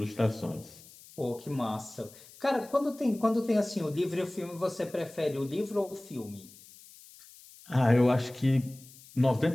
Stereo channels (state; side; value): noise; left; hiss, 21 dB below the sound